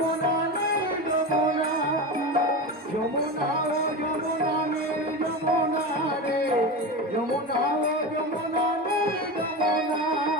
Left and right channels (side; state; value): both; normal; correlation 0.23